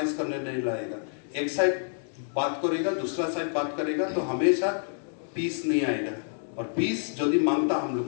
करने नहीं लाएगा। एक साइड बात करेगा दूसरा साइड बात करेगा तो हमेशा पीस नहीं आएगा। और पीस यदि मांगता हम लोग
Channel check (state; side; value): silent; right; digital silence